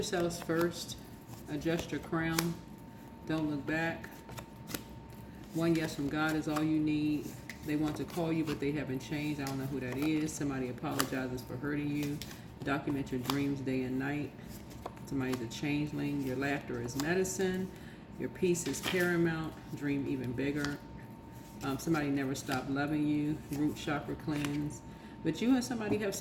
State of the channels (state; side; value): identical; both; correlation 1.00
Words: first. Adjust your crown. Don't look back. One yes from God is all you need. They want to call you, but they haven't changed. I don't know who that is. Somebody apologizes for hurting you. Document your dreams day and night. Somebody's a changeling. Your laughter is medicine. Your peace is paramount. Dream even bigger. Somebody never stopped loving you. Root chakra cleanse. But you and somebody have